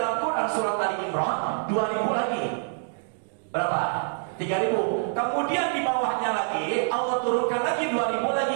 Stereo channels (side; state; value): left; silent; digital silence